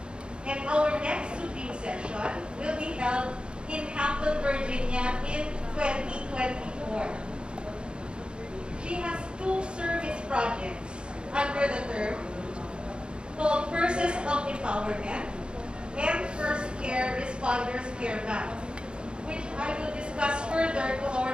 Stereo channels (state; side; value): late; left; 0.053 ms